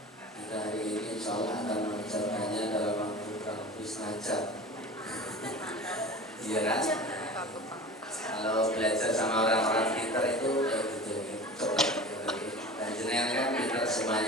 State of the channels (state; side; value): normal; both; correlation 0.36